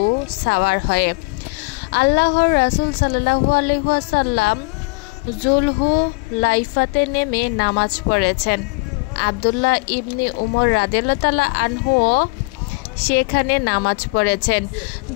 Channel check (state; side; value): quieter; right; 27.4 dB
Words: সাওয়ার হয়ে। আল্লাহর রাসূল সাল্লাল্লাহু আলাইহি ওয়াসাল্লাম যুলহুলাইফাতে নেমে নামাজ পড়েছেন। আব্দুল্লাহ ইবনে উমর রাদিয়াল্লাহু তাআলা আনহু সেখানে নামাজ পড়েছেন।